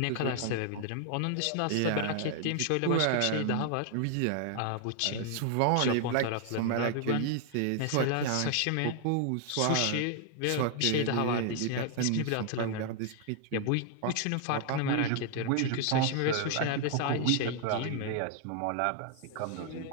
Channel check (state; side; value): different; both; correlation 0.00